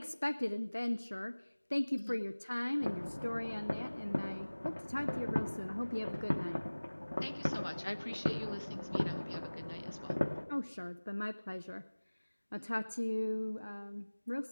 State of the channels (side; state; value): both; inverted; correlation -1.00